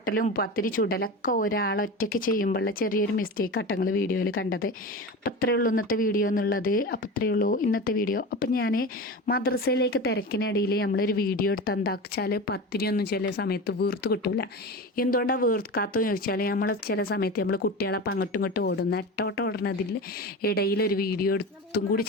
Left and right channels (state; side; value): normal; both; correlation 0.28